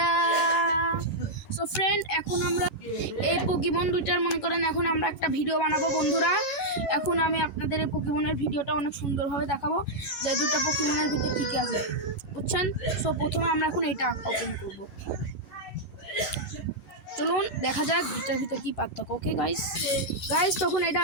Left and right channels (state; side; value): late; right; 11 ms